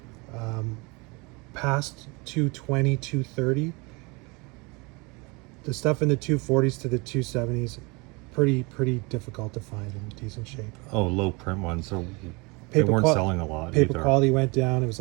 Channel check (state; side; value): quieter; left; 27.4 dB